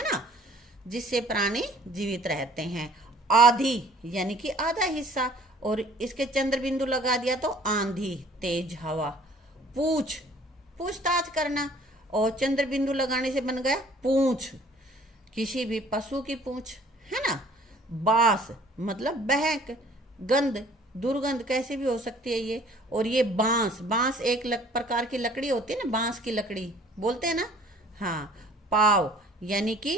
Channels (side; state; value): both; normal; correlation 0.54